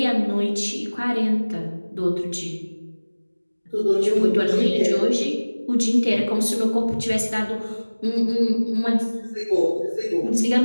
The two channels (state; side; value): inverted; both; correlation -1.00